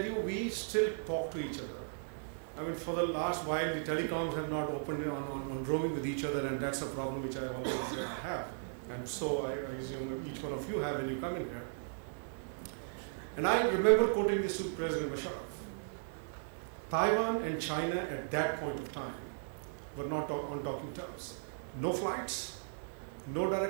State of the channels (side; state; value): left; silent; 53 dB below the other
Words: you, we still talk to each other. I mean, for the last while, the telecoms have not opened on roaming with each other, and that's a problem which I always have. And so I assume each one of you have when you come in here. And I remember quoting this to President Musharraf. Taiwan and China at that point of time were not on talking terms. No flights, no